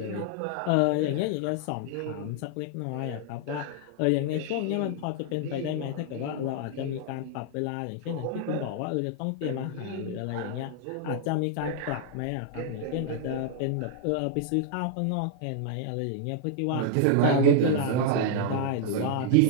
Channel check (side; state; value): both; different; correlation 0.00